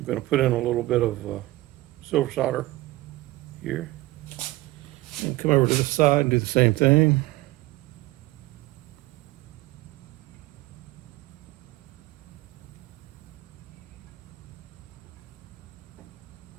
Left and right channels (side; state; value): left; quieter; 18.5 dB